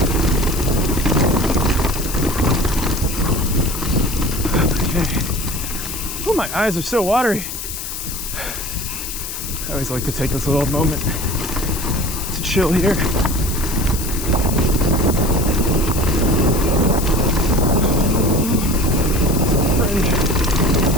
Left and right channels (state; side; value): noise; left; hiss, 7 dB below the sound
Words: Oh, my eyes are so watery. I always like to take this little moment to chill here.